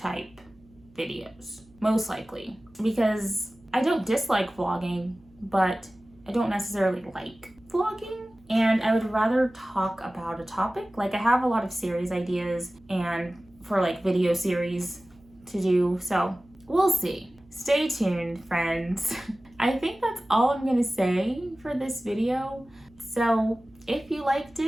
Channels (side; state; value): right; noise; hum, 29 dB below the sound